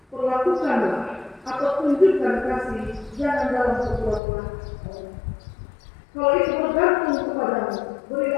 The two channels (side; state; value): right; drops out; at 4.2 s